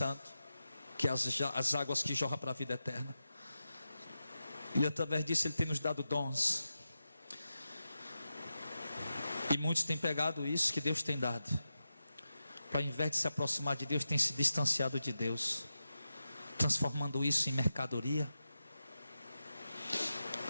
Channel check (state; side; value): inverted; both; correlation -0.90